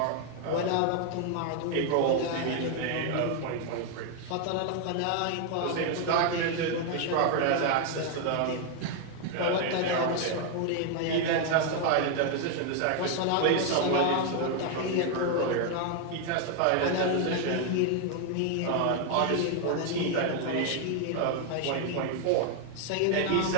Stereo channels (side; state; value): both; different; correlation 0.00